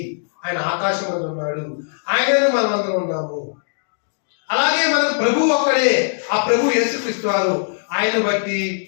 ఆయన ఆకాశం మీద ఉన్నాడు, ఆయనను మనమందరం ఉన్నాము. అలాగే మనకు ప్రభు ఒక్కడే, ఆ ప్రభు యేసుక్రీస్తు వారు. ఆయన బట్టి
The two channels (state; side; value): silent; right; digital silence